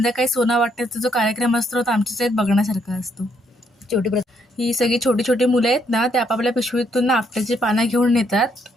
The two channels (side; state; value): both; normal; correlation 0.72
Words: सोनं वाटण्याचा जो कार्यक्रम असतो तो आमच्याच यात बघण्यासारखा असतो. ही सगळी छोटी छोटी मुलं आहेत ना, ते आपापल्या पिशवीतून ना आपट्याची पानं घेऊन येतात